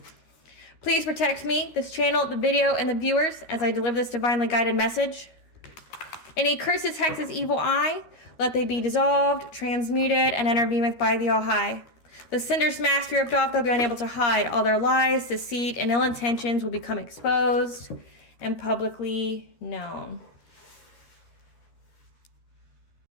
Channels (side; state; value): right; late; 13 ms